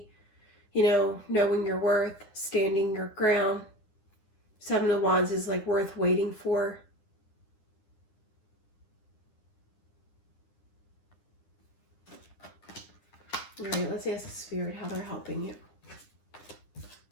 knowing your worth, standing your ground. 7 of Wands is like worth waiting for. All right, let's ask Spirit how they're helping you.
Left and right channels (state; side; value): late; right; 9.9 ms